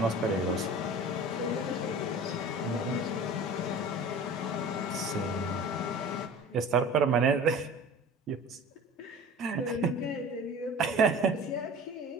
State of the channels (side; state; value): both; normal; correlation 0.40